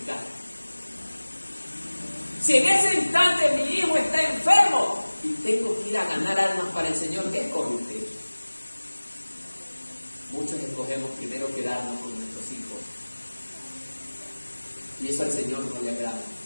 Si en ese instante mi hijo está enfermo y tengo que ir a ganar almas para el Señor, ¿qué escoge usted? Muchos escogemos primero quedarnos con nuestros hijos. Y eso al Señor no le agrada.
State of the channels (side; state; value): both; inverted; correlation -1.00